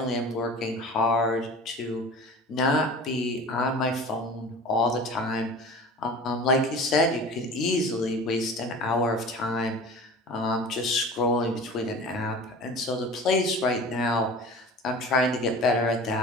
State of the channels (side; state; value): both; normal; correlation 0.39